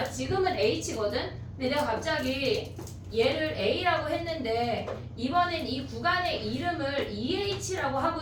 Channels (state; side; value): identical; both; correlation 1.00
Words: 지금은 H거든? 근데 내가 갑자기 얘를 A라고 했는데 이번엔 이 구간의 이름을 EH라고 하고